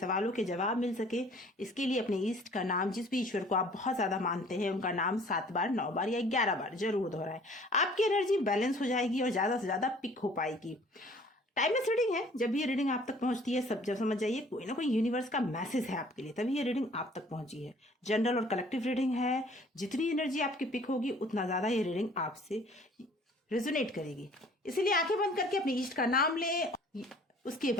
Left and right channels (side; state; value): both; normal; correlation 0.53